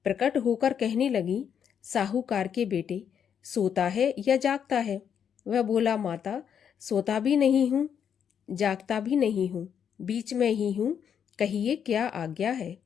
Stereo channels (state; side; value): quieter; right; 8.1 dB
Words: प्रकट होकर कहने लगी, साहूकार के बेटे, सोता है या जागता है। वह बोला, माता सोता भी नहीं हूँ, जागता भी नहीं हूँ, बीच में ही हूँ, कहिए क्या आज्ञा है।